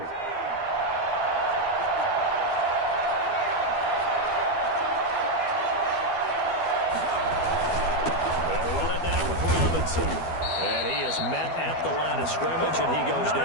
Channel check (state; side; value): late; right; 12 ms